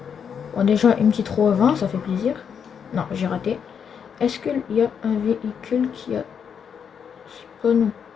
Bon, déjà une petite roue avant, ça fait plaisir. Non, j'ai raté. Est-ce qu'il y a un véhicule qui a spawn ou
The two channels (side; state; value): right; quieter; 7.3 dB